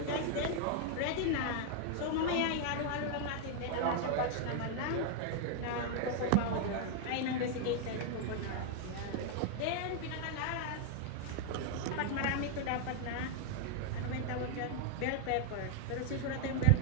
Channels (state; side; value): different; both; correlation 0.00